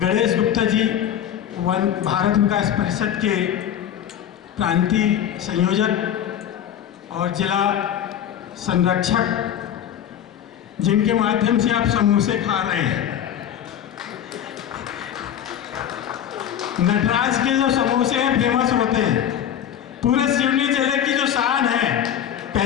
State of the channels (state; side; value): quieter; right; 9.9 dB